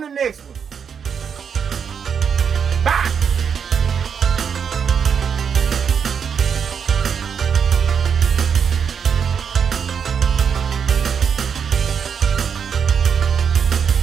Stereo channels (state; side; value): quieter; left; 7.0 dB